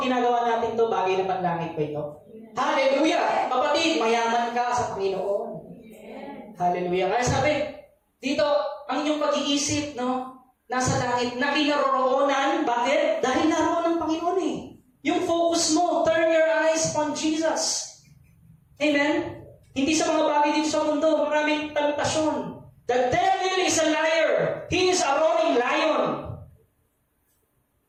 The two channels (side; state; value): both; identical; correlation 1.00